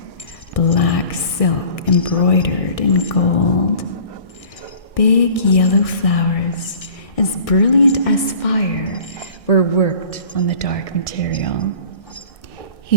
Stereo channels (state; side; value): late; right; 1.6 ms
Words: silk embroidered in gold. Big yellow flowers, as brilliant as fire, were worked on the dark material. He